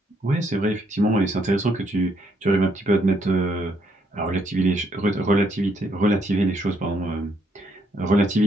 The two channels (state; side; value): normal; both; correlation 0.72